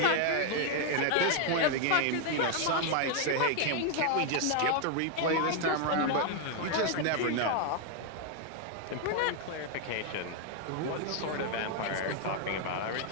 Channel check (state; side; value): different; both; correlation 0.00